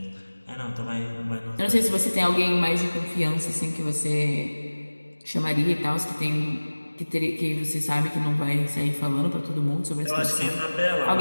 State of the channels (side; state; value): both; inverted; correlation -1.00